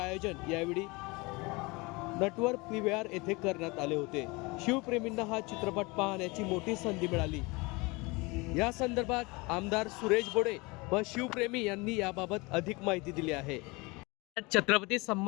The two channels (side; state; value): right; quieter; 25.4 dB